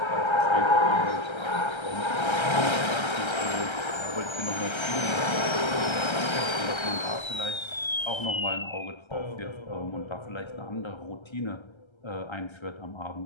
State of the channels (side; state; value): right; late; 1.3 ms